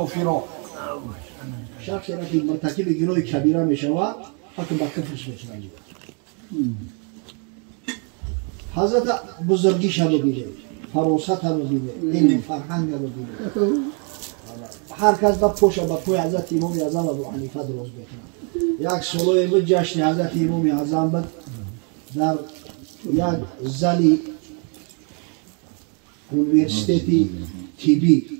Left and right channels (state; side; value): quieter; left; 38.2 dB